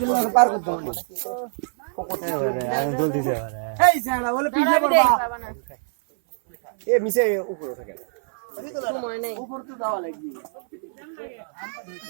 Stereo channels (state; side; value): silent; left; 59 dB below the other